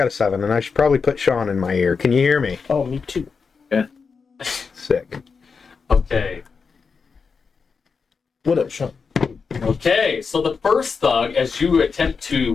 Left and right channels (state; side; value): quieter; right; 5.3 dB